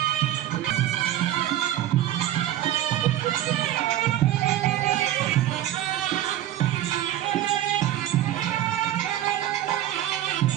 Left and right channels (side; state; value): left; quieter; 12.8 dB